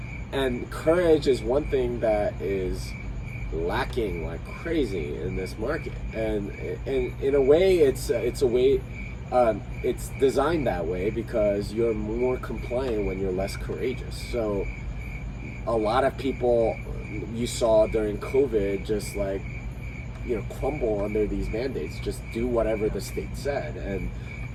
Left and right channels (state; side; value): identical; both; correlation 1.00